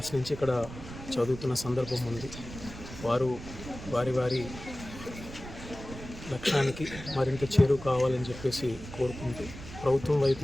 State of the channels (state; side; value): noise; right; rumble, 12 dB below the sound